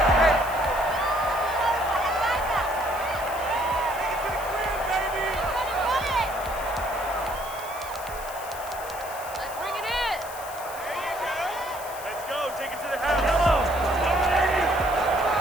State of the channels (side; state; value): left; noise; hiss, 14 dB below the sound